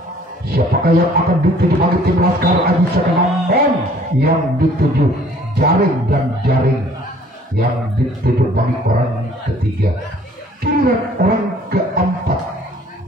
Siapakah yang akan dituju bagi tim Laskar Aji Saka, namun yang dituju jaring dan jaring yang dituju bagi orang ketiga. Giliran orang keempat.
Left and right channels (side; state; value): both; normal; correlation 0.56